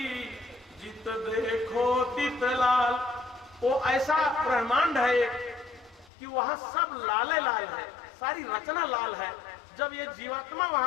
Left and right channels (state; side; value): drops out; right; at 6.1 s